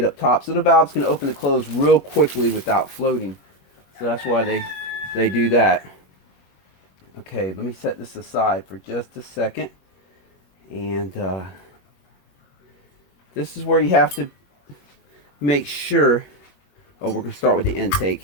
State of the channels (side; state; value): right; late; 21 ms